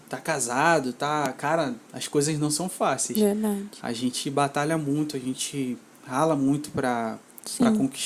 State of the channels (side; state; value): both; identical; correlation 1.00